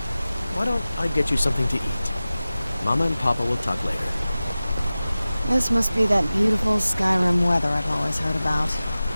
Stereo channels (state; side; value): inverted; both; correlation -0.97